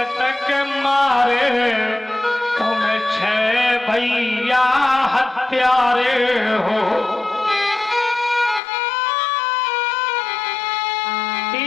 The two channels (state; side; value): drops out; right; at 8.6 s